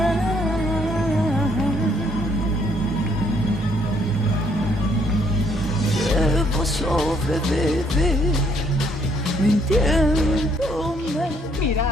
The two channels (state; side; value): normal; both; correlation 0.67